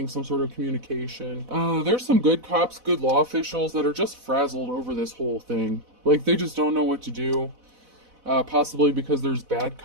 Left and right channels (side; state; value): left; late; 4.0 ms